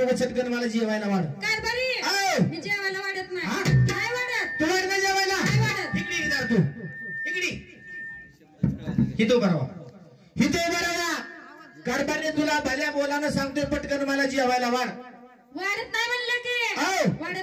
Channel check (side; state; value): both; identical; correlation 1.00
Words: चटकन मला जेवायला वाढ. कारभारी, आओ. मी जेवायला वाढत नाही. हा? काय वाढत? तू वाढ ना जेवायला. नाही वाढत. इकडे ये जरा तू. इकडे हिथं उभा राहा. कारभारने तुला भल्या बोलानं सांगतोय, पटकन मला जेवायला वाढ. वाढत नाही म्हणलं की आओ.